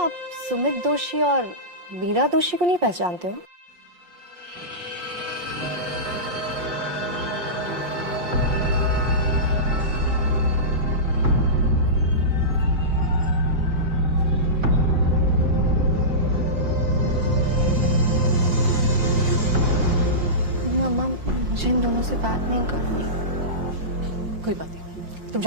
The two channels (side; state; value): left; late; 5.6 ms